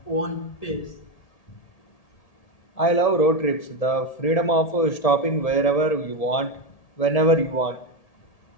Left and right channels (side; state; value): right; late; 1.8 ms